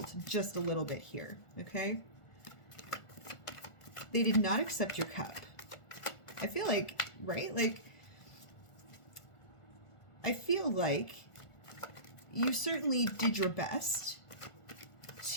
just a little bit here, okay? They did not accept your cup. I feel like, right? Like, I feel like you certainly did your best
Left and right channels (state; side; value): late; right; 1.4 ms